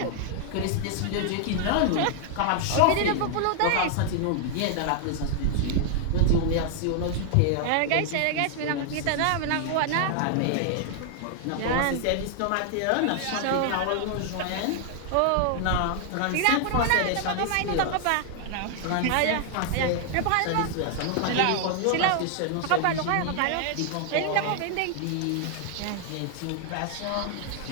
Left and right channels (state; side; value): different; both; correlation 0.00